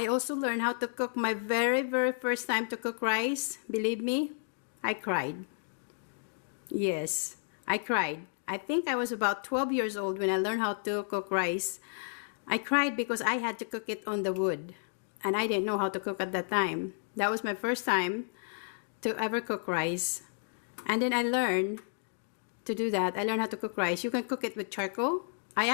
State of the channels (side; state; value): right; silent; digital silence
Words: also learned how to cook my very first time to cook rice. Believe me, I cried. Yes, I cried. I think I was about 12 years old when I learned how to cook rice. I cried because I had to cook it on the wood, and I didn't know how to cook at that time. That was my first time to ever cook rice. And then I learned to do that. I learned how to cook rice. You can cook it with charcoal. I